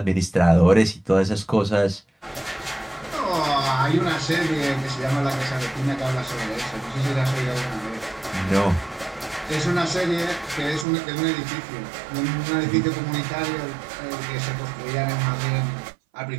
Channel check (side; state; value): left; drops out; at 10.9 s